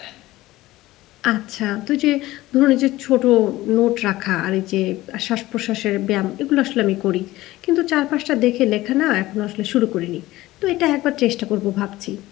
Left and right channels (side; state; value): right; quieter; 17.4 dB